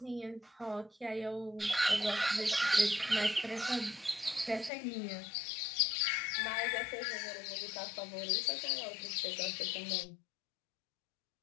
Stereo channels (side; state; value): right; drops out; at 4.7 s